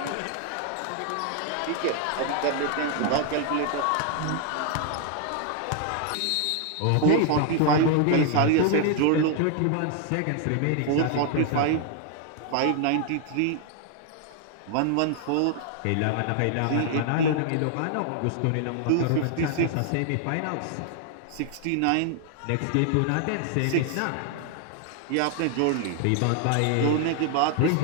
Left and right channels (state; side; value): different; both; correlation 0.00